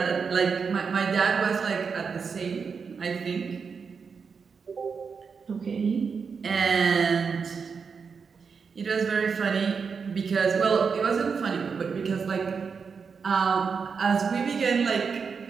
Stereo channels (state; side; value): quieter; left; 5.7 dB